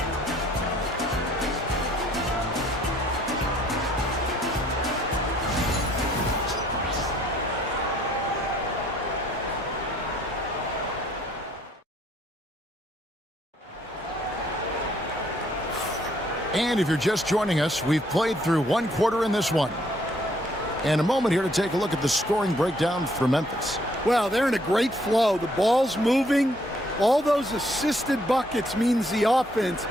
And if you're just joining us, we've played through 1 quarter in this one. And a moment here to take a look at the scoring breakdown for Memphis. Well, they're in a great flow. The ball's moving. All those assisted buckets means the offense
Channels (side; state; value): both; normal; correlation 0.65